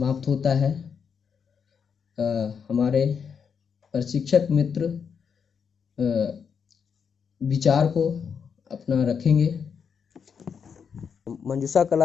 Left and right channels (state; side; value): quieter; right; 6.6 dB